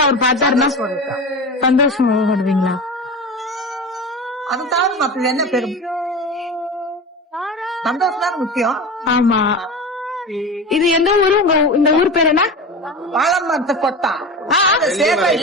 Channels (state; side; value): normal; both; correlation 0.29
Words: அவர் பார்த்தாருன்னா சந்தோஷமா படுவீங்களா? அது தவிர மற்றது என்ன பெரும் சந்தோஷம் தான் முக்கியம். ஆமா. இது எந்த ஊரு? இந்த ஊர் பேர் என்ன? வாழமரத்து கொட்டா.